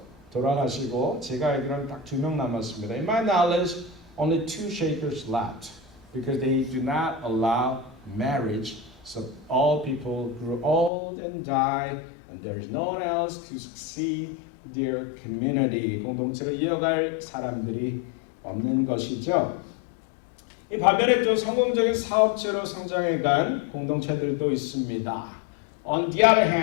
돌아가시고 제가 알기로는 딱 2명 남았습니다. In my knowledge, only 2 Shakers left because they do not allow marriage. So all people grew old and died, and there is no one else to succeed their community. 공동체를 이어갈 사람들이 없는 것이죠. 이 반면에 또 성공적인 사업체로 성장해간 공동체들도 있습니다. On the other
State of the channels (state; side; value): drops out; right; at 10.9 s